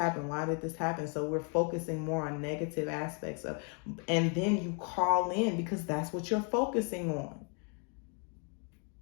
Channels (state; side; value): quieter; right; 38.8 dB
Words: Why did this happen? So we're focusing more on negative aspects of, and then you call in because that's what you're focusing on.